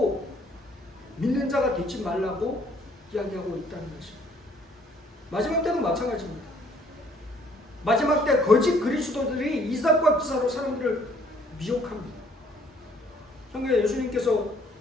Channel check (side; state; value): both; normal; correlation 0.62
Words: 믿는 자가 되지 말라고 이야기하고 있다는 것입니다. 마지막 때도 마찬가지입니다. 마지막 때 거짓 그리스도들이 이삭과 기사로 사람들을 미혹합니다. 성경에 예수님께서